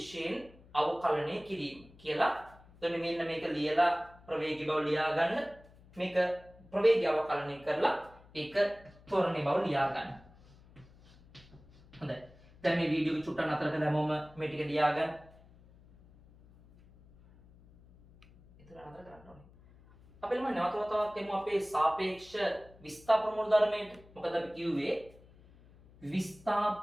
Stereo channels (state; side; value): noise; left; hum, 25 dB below the sound